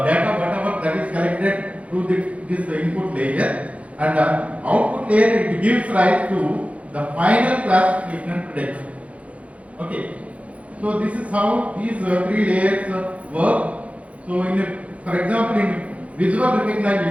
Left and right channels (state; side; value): late; left; 0.065 ms